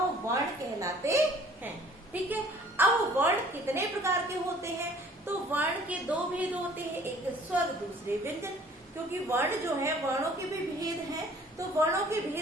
वर्ण कहलाते हैं, ठीक है। अब वर्ण कितने प्रकार के होते हैं, तो वर्ण के 2 भेद होते हैं, एक स्वर दूसरे व्यंजन। क्योंकि वर्ण जो है, वर्णों के भी भेद हैं। तो वर्णों के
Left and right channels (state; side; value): normal; both; correlation 0.54